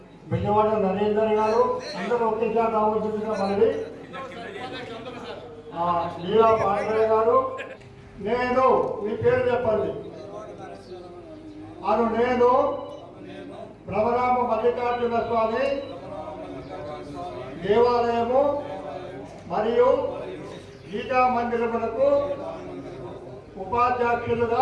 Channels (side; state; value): both; identical; correlation 1.00